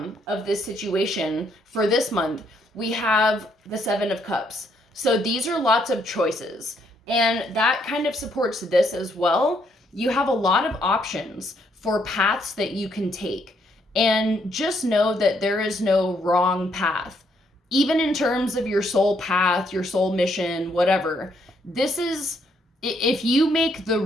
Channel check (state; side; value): normal; both; correlation 0.72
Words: of this situation for this month, we have the Seven of Cups. So these are lots of choices, and that kind of supports this as well. You have a lot of options for paths that you can take. And just know that there is no wrong path. Even in terms of your soul path, your soul mission, whatever. This is, if you make the